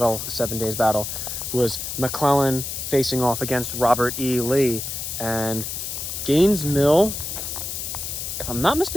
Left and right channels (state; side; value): noise; left; hiss, 5 dB below the sound